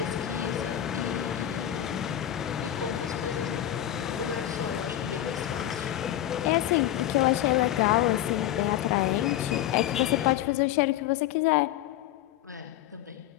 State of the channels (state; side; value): quieter; right; 12.4 dB